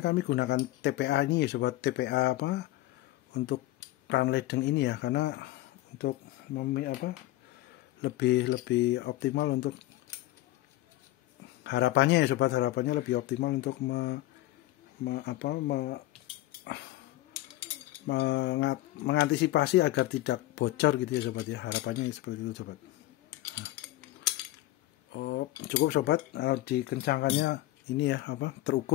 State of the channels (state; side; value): quieter; right; 16.4 dB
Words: gunakan TPA ini ya sobat. TPA untuk keran ledeng ini ya, karena untuk lebih optimal untuk harapannya ya sobat, harapannya lebih optimal untuk mengantisipasi agar tidak bocor gitu ya sobat ya, harapannya seperti itu sobat. Cukup sobat, dikencangkannya ini ya